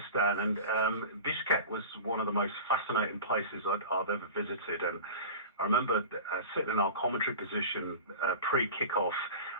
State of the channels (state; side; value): inverted; both; correlation -0.34